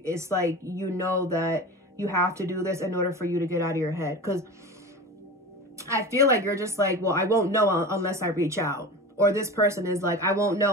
like, you know that you have to do this in order for you to get out of your head. Because I feel like you're just like, well, I won't know unless I reach out. Or this person is like, I won't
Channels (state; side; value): normal; both; correlation 0.31